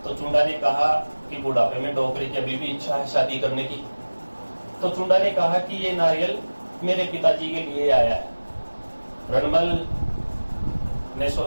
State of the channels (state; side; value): inverted; both; correlation -1.00